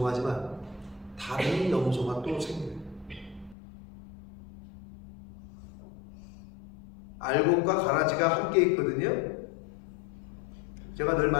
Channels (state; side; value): drops out; right; at 3.6 s